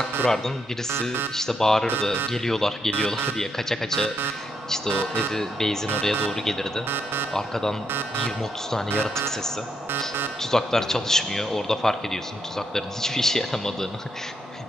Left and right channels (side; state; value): both; normal; correlation 0.79